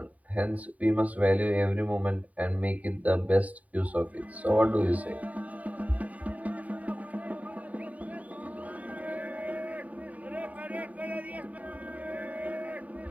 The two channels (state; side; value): late; left; 0.071 ms